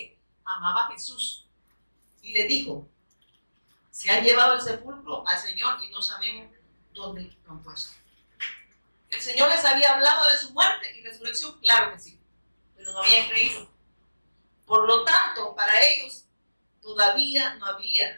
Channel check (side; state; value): both; inverted; correlation -1.00